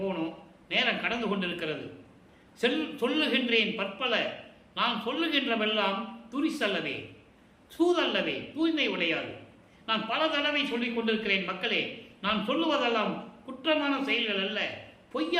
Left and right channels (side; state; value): both; identical; correlation 1.00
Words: போகணும். நேரம் கடந்து கொண்டிருக்கிறது. சொல்லுகின்றேன் பற்பல, நான் சொல்லுகின்றவெல்லாம் துரிசல்லவே, சூதல்லவே, தூய்மை உடையாது. நான் பல தடவை சொல்லிக் கொண்டிருக்கிறேன் மக்களே, நான் சொல்லுவதெல்லாம் குற்றமான செயல்கள் அல்ல,